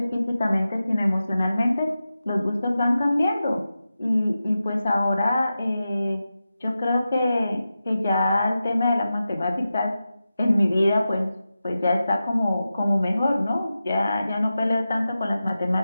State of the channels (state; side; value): inverted; both; correlation -0.92